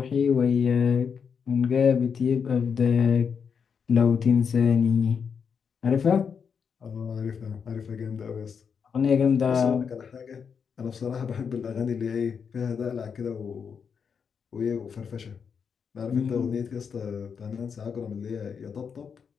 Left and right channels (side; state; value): right; quieter; 6.5 dB